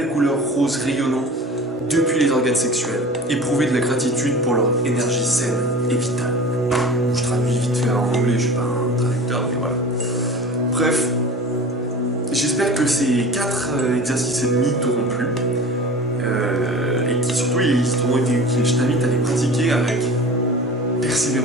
couleur rose rayonnant depuis les organes sexuels. Éprouvez de la gratitude pour leur énergie saine et vitale. Je traduis vite fait en anglais, je suis pas un traducteur, mais voilà. Bref, j'espère que ces 4 exercices et demi t'auront plu. Et qui surtout t'auront été utiles. Je t'invite à les pratiquer avec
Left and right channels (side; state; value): both; normal; correlation 0.38